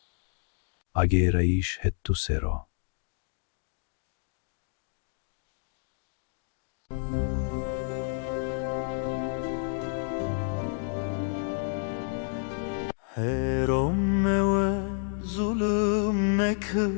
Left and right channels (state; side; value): silent; right; 58 dB below the other